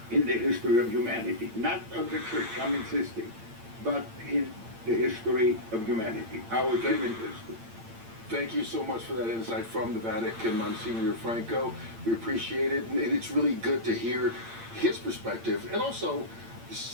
in the history of humanity. Not of the Church, I'm insisting, but in the history of humanity, our human history. Thank you so much for that insight from the Vatican, Monsignor Franco. We appreciate it, and it's really good to hear his perspective, and also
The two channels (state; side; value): late; left; 8.8 ms